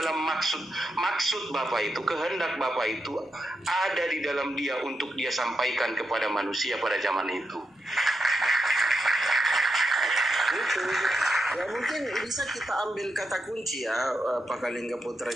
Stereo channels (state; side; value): normal; both; correlation 0.85